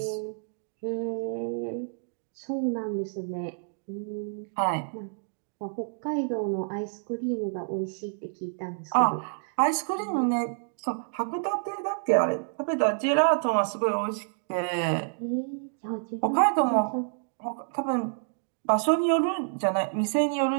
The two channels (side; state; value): left; silent; digital silence